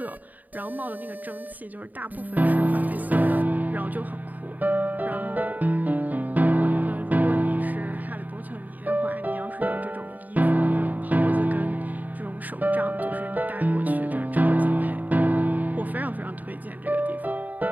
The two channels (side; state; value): left; late; 0.082 ms